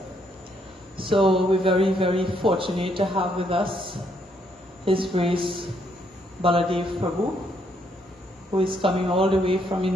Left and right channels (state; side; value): normal; both; correlation 0.72